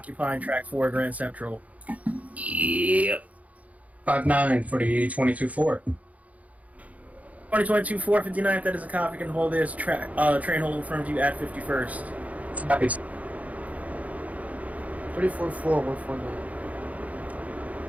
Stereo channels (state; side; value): late; left; 0.070 ms